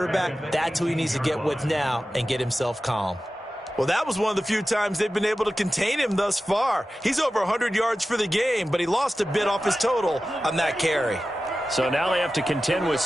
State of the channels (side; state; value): both; normal; correlation 0.94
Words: that's who he needs to get with now and get himself calm. Well, that was one of the few times they've been able to contain him thus far. He's over 100 yards for the game, but he lost a bit off his total on that carry. So now they have to contend with